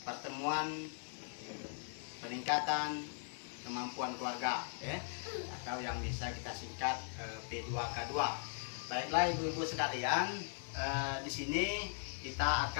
pertemuan peningkatan kemampuan keluarga ya, atau yang bisa kita singkat P2K2. Baiklah ibu-ibu sekalian, di sini kita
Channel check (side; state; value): right; silent; 51 dB below the other